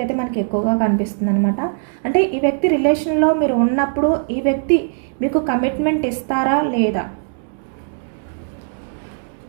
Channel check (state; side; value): silent; left; digital silence